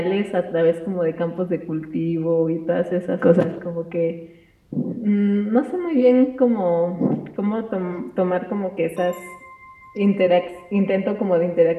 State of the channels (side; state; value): both; identical; correlation 1.00